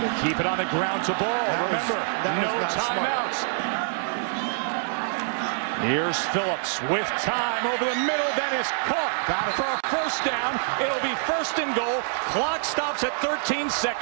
Keep it on the ground to Ball. Remember, no timeouts. Here's Phillips with time over the middle. Then is caught for a 1st down. It'll be 1st and goal. Clock stops at 13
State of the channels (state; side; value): silent; left; 61 dB below the other